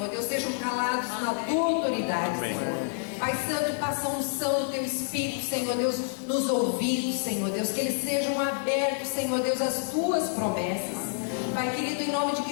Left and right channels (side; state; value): right; silent; digital silence